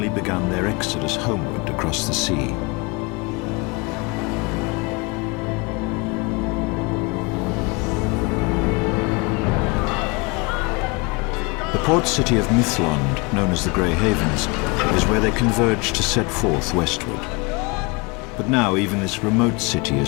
begun their exodus homeward across the sea. The port city of Mithlond, known as the Grey Havens, is where they converge to set forth westward. But now even this remote city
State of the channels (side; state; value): right; quieter; 27.7 dB